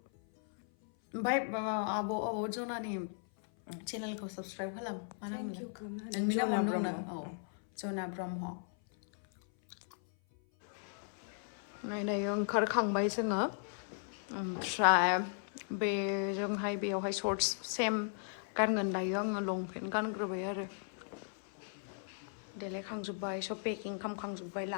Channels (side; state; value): right; silent; 53 dB below the other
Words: ओमफ्राय आब' जनानि चेनेलखौ साबस्क्राइब खालाम मा नाम जना ब्रह्म औ जना ब्रह्म दायो ओंखारखांबाय जोङो ओमफ्राय बेजोंहाय बेयावहाय शर्ट्स सेम गानगोन दायो आङो लंपेन्ट गानग्रोबाय आरो देलायखांजोब्बाय सब पेकिं खालामखांजोब्बाय